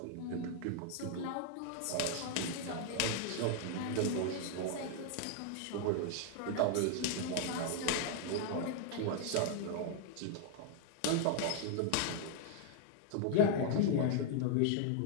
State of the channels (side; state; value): both; different; correlation 0.00